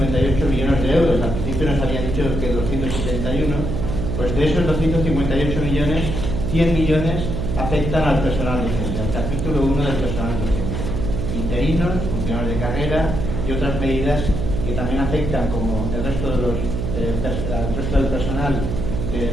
millones de euros. Al principio nos habían dicho que 271. Pues de esos 258 millones, 100 millones afectan al personal docente, al capítulo 1 del personal docente. Interinos, funcionarios de carrera y otras medidas que también afectan, como el resto del personal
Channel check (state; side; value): noise; right; hum, 3 dB below the sound